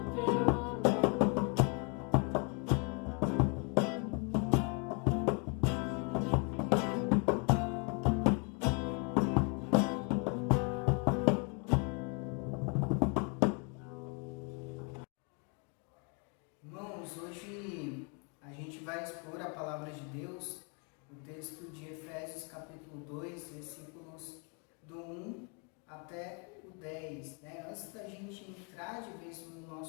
teu amor. Irmãos, hoje a gente vai expor a palavra de Deus, o texto de Efésios capítulo 2, versículos do 1 até o 10. Antes da gente entrar de vez no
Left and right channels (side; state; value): right; quieter; 36.2 dB